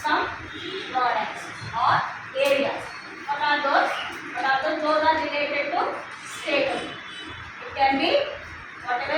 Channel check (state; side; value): identical; both; correlation 1.00